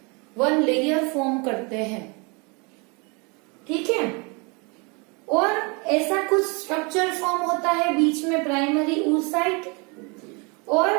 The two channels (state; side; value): quieter; left; 30.5 dB